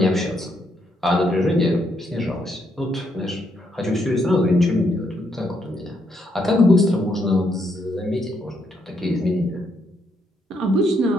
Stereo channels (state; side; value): normal; both; correlation 0.76